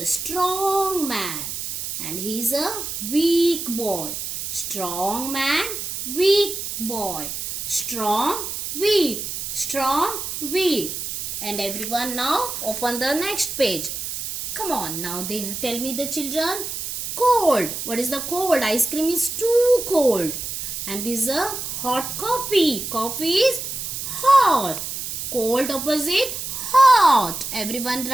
strong man and he's a weak boy. Strong man, weak boy. Strong, weak. Strong, weak. And everyone now open the next page. Come on, now they tell me the children. Cold. What is the cold? Ice cream is too cold. And this is a hot coffee. Coffee is hot. Cold opposite hot. Everyone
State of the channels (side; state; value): right; noise; hiss, 5 dB below the sound